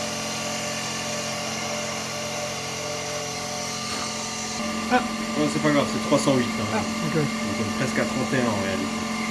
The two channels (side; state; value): both; identical; correlation 1.00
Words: Ah. Non, c'est pas grave, c'est 308. Hein. Ah, ok. Donc on est presque à 31 en réalité.